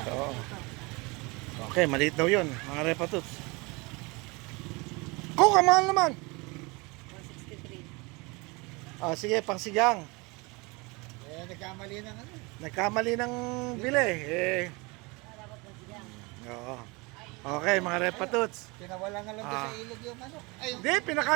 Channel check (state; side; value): quieter; left; 26.5 dB